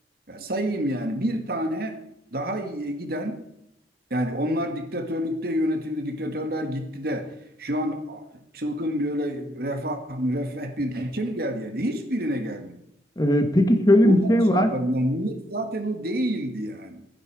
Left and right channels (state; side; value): normal; both; correlation 0.71